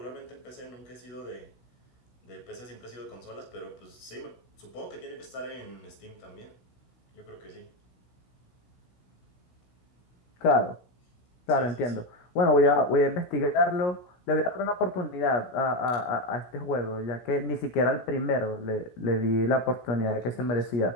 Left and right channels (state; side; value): late; right; 16 ms